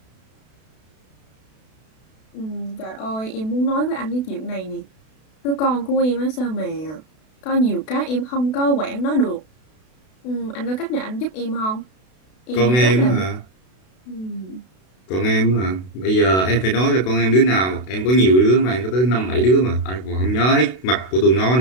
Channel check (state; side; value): late; right; 32 ms